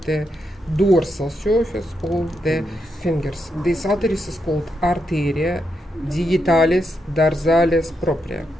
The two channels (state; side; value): normal; both; correlation 0.83